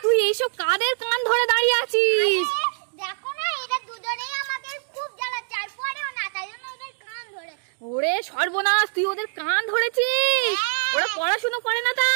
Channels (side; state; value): left; silent; digital silence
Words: তুই এইসব কাদের কান ধরে দাঁড়িয়ে আছিস? দেখো না, এরা দুজনেই আমাদের খুব জ্বালাচ্ছে, আর পরেও না, তাই জন্য ওদের কান ধরে। ওরে সর্বনাশ, তুই ওদের কান ধরেছিস? হ্যাঁ। ওরা পড়াশোনা করে না